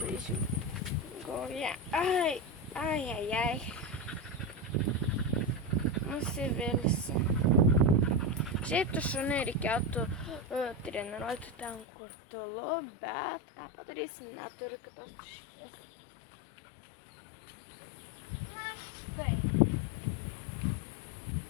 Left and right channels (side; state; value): right; drops out; at 11.9 s